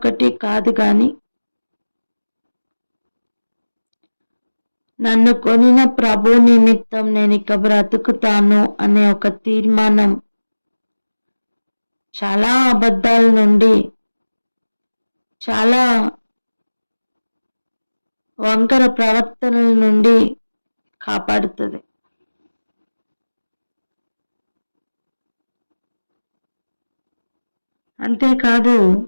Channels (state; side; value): inverted; both; correlation -1.00